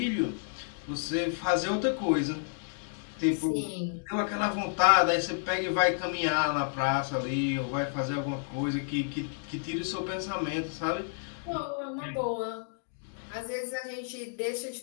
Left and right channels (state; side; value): silent; right; digital silence